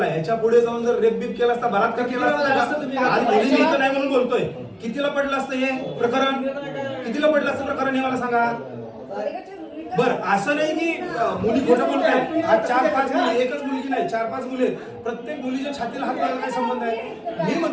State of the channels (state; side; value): identical; both; correlation 1.00